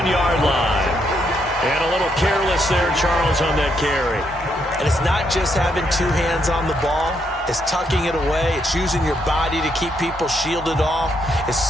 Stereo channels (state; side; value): normal; both; correlation 0.76